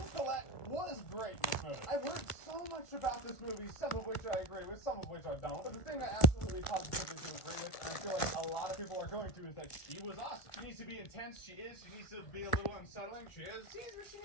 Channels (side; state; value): right; late; 1.5 ms